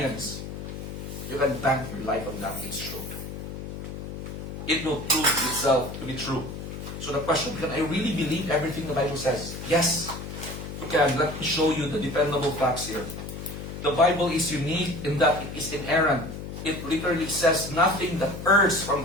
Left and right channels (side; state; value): left; noise; hum, 8 dB below the sound